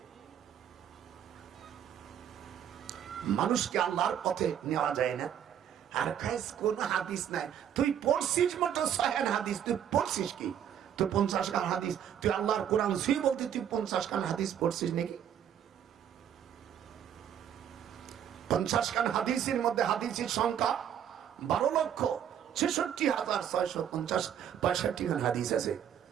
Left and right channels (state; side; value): quieter; left; 9.5 dB